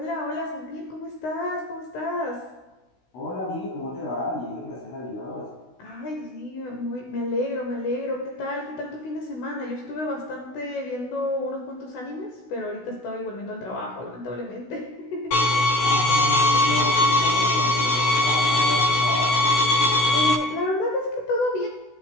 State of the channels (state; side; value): late; right; 16 ms